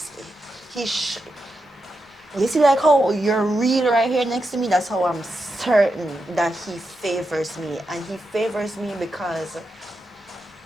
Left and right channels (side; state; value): both; normal; correlation 0.87